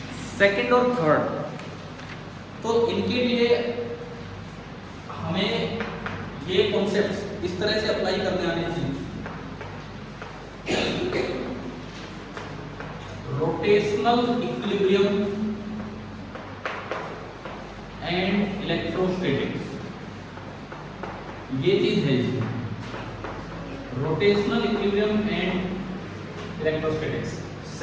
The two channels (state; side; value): identical; both; correlation 1.00